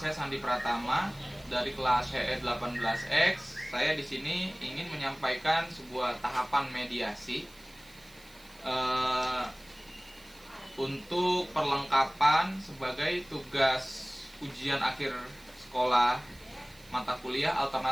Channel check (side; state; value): right; noise; hiss, 24 dB below the sound